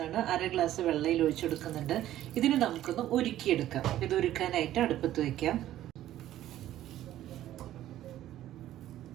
ആണ്, 1/2 ഗ്ലാസ് വെള്ളയിൽ ഒഴിച്ചു കൊടുക്കുന്നുണ്ട്. ഇതിന് നമുക്കൊന്ന് ഉരുക്കിയെടുക്കാം. ഇത് ഉരുക്കാനായിട്ട് അടുപ്പത്ത് വയ്ക്കാം.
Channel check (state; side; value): quieter; left; 13.2 dB